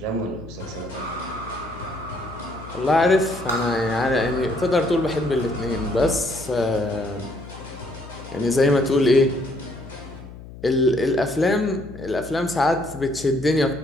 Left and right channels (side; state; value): left; noise; hum, 15 dB below the sound